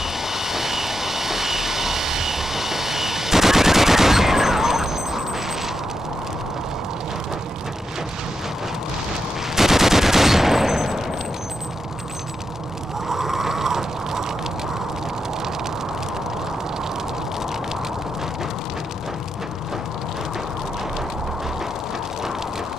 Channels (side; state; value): both; normal; correlation 0.85